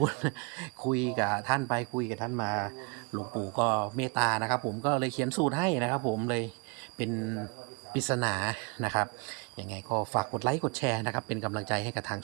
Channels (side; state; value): left; quieter; 32.4 dB